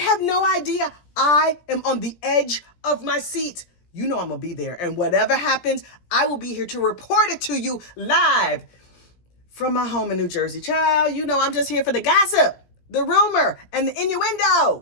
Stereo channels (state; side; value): late; right; 17 ms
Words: no idea. I am on the edge of my seat. You know I'm going to be there. And whatever happens, I will be here to report it to you live from my home in New Jersey. Child, you know I'm just here for the gossip, the rumor, and the